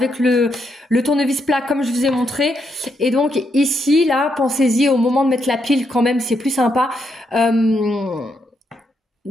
le tournevis plat comme je vous ai montré. Et donc ici, là, pensez-y au moment de mettre la pile quand même, c'est plus sympa.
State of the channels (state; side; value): normal; both; correlation 0.79